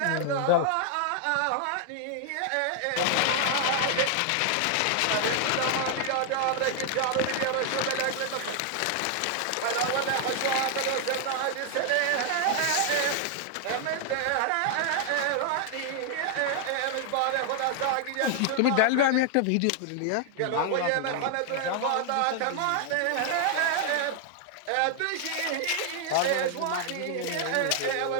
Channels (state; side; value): different; both; correlation 0.00